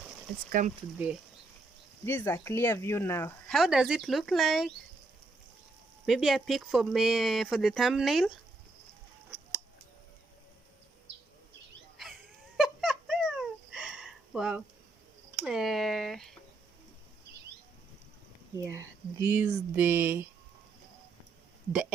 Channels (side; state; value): left; quieter; 3.3 dB